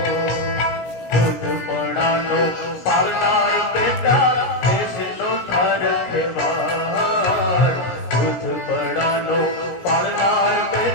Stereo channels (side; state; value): right; late; 17 ms